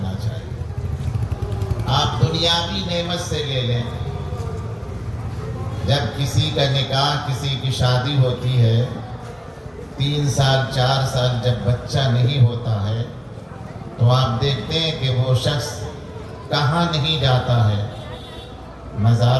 چاہیے۔ آپ دنیاوی نعمت سے لے لیں، جب کسی کا نکاح، کسی کی شادی ہوتی ہے، 3 سال 4 سال جب بچہ نہیں ہوتا ہے تو آپ دیکھتے ہیں کہ وہ شخص کہاں نہیں جاتا ہے،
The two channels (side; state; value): both; identical; correlation 1.00